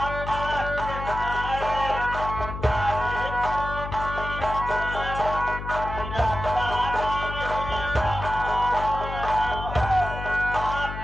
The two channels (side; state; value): left; noise; hum, 8 dB below the sound